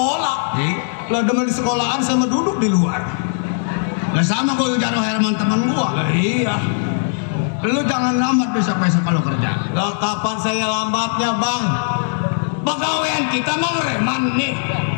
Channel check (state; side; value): silent; right; digital silence